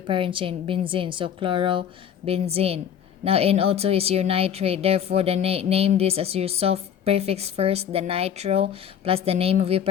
parent chain, benzene. So chlorobenzene. Now NO2 is your nitrate. Therefore, the name this as your soft prefix first, the nitro, plus the name of your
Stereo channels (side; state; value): right; quieter; 8.8 dB